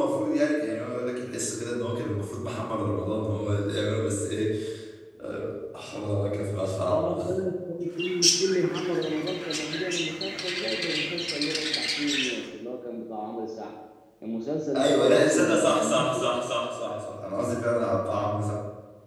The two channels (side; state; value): both; identical; correlation 1.00